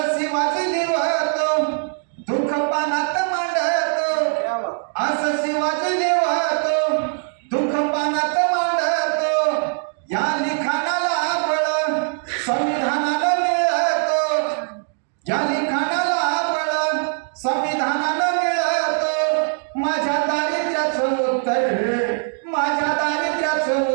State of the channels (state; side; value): silent; left; 57 dB below the other